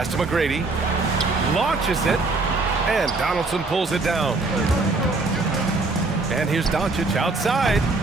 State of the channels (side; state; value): left; quieter; 3.5 dB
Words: to McGrady. Launches it. And Donaldson pulls it down. And here's Doncic outside.